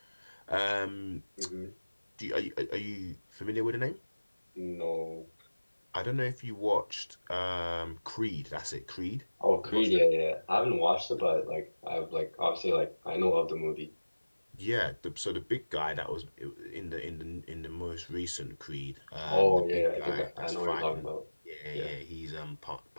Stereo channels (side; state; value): both; inverted; correlation -1.00